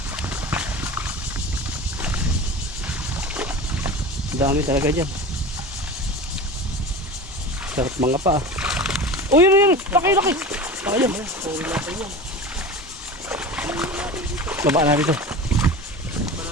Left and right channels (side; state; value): both; normal; correlation 0.33